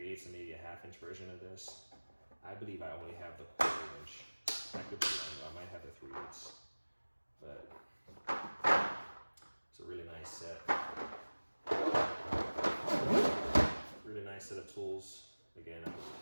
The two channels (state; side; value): inverted; both; correlation -1.00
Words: and maybe a 1/2-inch version of this. I believe I only have the 1/4-inch. I could be wrong, I might have the 3/8. But it's a really nice set. Really nice set of tools. Again,